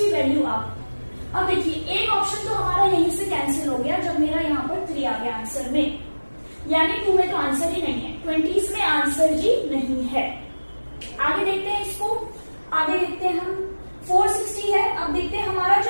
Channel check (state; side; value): inverted; both; correlation -1.00